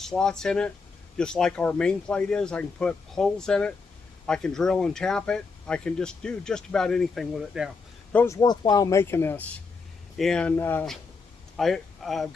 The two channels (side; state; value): right; quieter; 4.5 dB